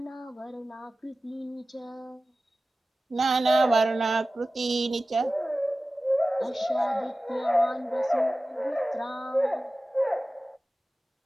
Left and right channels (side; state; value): both; normal; correlation 0.95